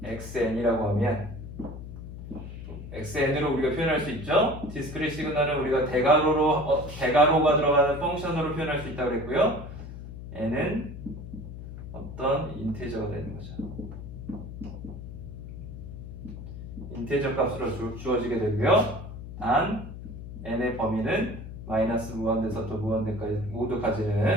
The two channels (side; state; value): left; noise; hum, 10 dB below the sound